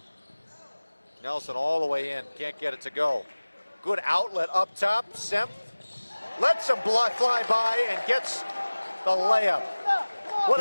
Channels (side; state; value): both; inverted; correlation -1.00